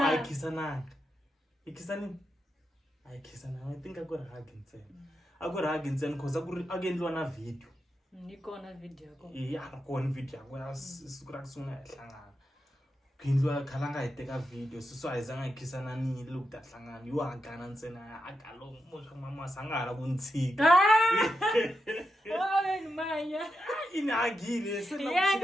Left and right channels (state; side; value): normal; both; correlation 0.87